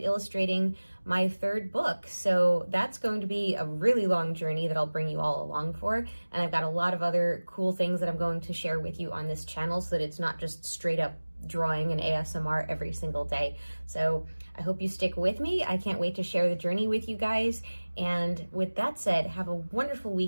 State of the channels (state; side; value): inverted; both; correlation -1.00